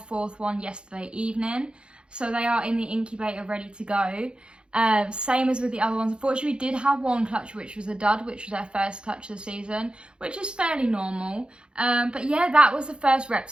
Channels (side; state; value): left; late; 0.053 ms